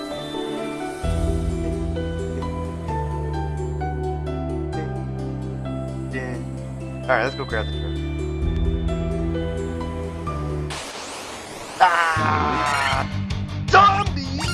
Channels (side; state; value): both; identical; correlation 1.00